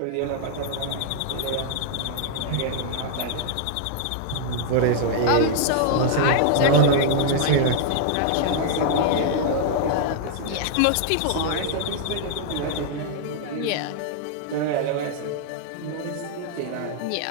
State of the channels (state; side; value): different; both; correlation -0.01